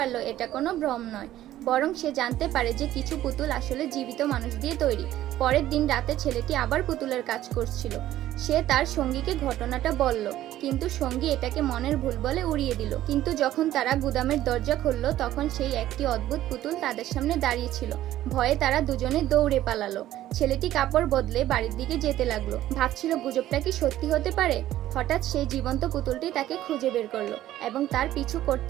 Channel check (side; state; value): left; quieter; 13.6 dB